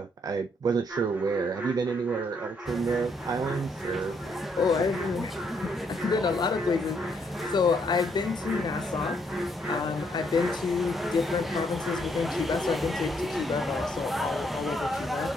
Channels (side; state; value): both; normal; correlation 0.72